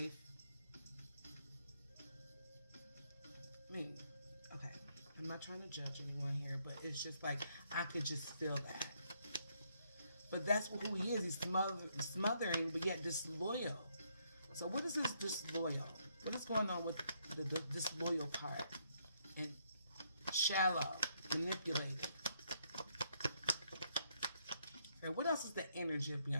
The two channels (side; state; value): both; inverted; correlation -0.73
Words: I mean, okay. I'm not trying to judge anyone here, but it's just like, I could just feel that. But that's who he is. He's smothering, but yet disloyal. So what is this disloyal? What is going on with the disloyal part? And shallow, manipulating. And what else is the energy of